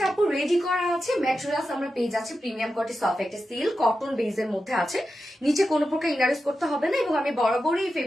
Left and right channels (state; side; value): normal; both; correlation 0.90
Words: আপু রেডি করা আছে, ম্যাটেরিয়ালস আমরা পেয়ে যাচ্ছি প্রিমিয়াম কোয়ালিটি সফট একটা সিল্ক কটন বেজের মধ্যে আছে, নিচে কোনো প্রকার ইনারেস করতে হবে না, এবং আমি বরাবরই এই